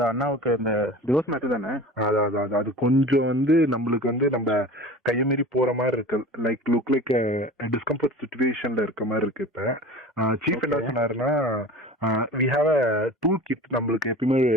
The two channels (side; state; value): both; normal; correlation 0.37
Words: அண்ணாவுக்கு இந்த டிவோர்ஸ் மேட்டர் தானே? அது கொஞ்சம் நம்மளுக்கு நம்ம கையமீறி போற மாதிரி இருக்கு. லுக் லைக் டிஸ்கம்ஃபர்ட் சிச்சுவேஷன்ல இருக்க மாதிரி இருக்கு. இப்ப சீஃப் என்ன சொன்னாருன்னா, we have a tool kit. நம்மளுக்கு எப்பயுமே